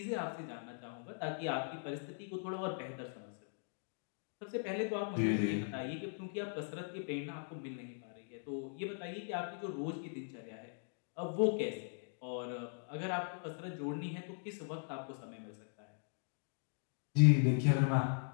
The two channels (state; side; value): silent; right; digital silence